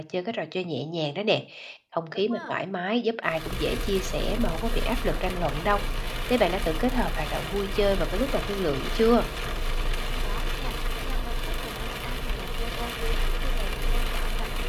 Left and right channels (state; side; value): identical; both; correlation 1.00